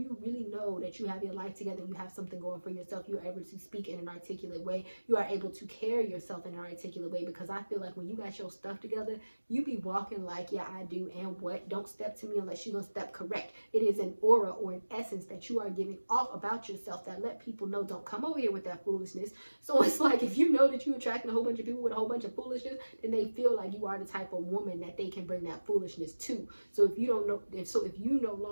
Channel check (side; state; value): both; inverted; correlation -1.00